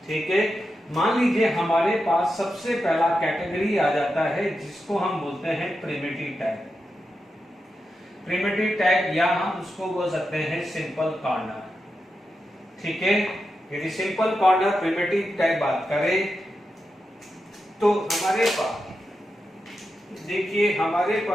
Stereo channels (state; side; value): normal; both; correlation 0.88